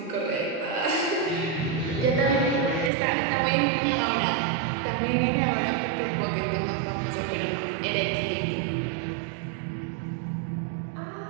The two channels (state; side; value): drops out; left; at 2.9 s